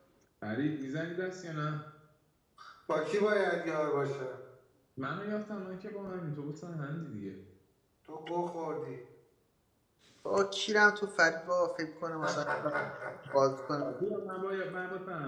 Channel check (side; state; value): both; identical; correlation 1.00